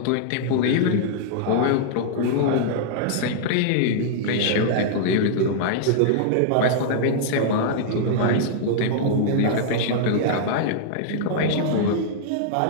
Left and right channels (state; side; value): different; both; correlation -0.01